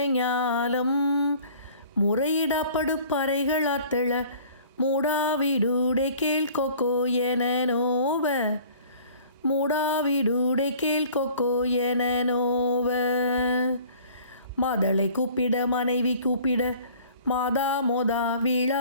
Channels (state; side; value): inverted; both; correlation -0.50